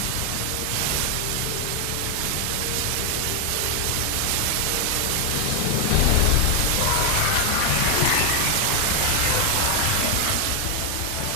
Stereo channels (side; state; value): both; different; correlation 0.00